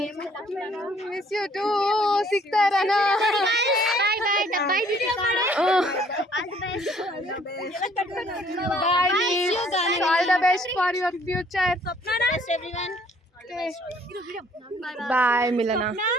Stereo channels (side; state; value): both; normal; correlation 0.60